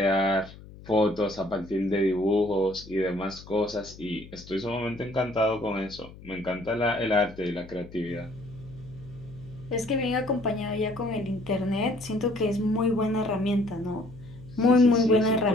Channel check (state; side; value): noise; left; hum, 18 dB below the sound